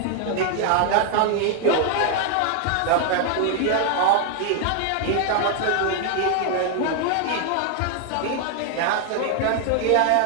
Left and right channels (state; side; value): different; both; correlation 0.00